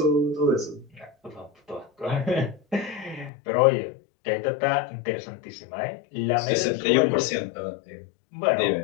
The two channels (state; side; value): drops out; right; at 3.3 s